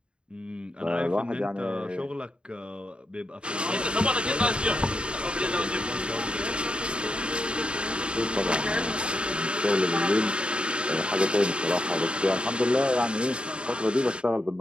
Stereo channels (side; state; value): left; late; 0.054 ms